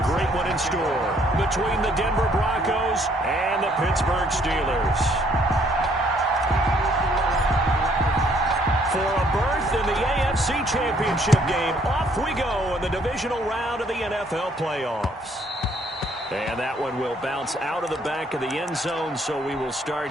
great one in store between the Denver Broncos and the Pittsburgh Steelers. For a berth in the AFC Championship game, off we go in the divisional round of the NFL playoffs. And that one will bounce out of the back of the end zone, so we will start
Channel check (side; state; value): both; normal; correlation 0.65